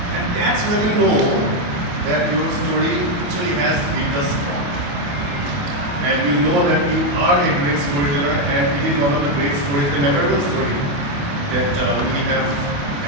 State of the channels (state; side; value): late; left; 28 ms